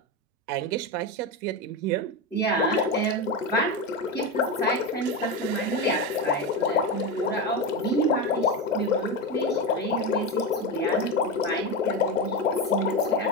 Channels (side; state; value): both; normal; correlation 0.17